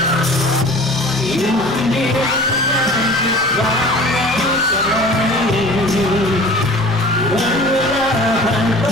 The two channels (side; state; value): both; normal; correlation 0.43